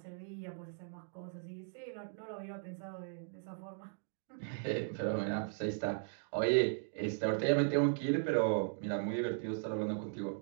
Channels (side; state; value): left; silent; digital silence